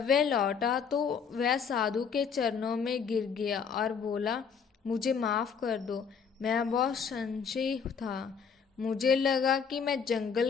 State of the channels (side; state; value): right; quieter; 6.4 dB